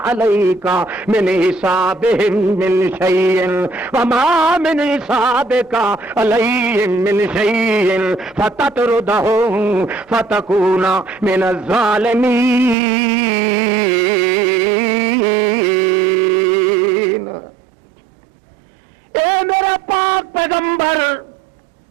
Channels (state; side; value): drops out; left; at 12.8 s